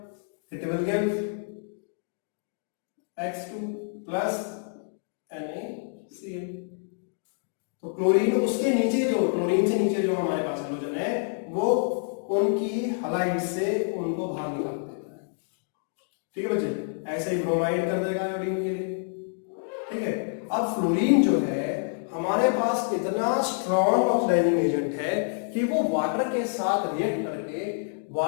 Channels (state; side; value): silent; right; digital silence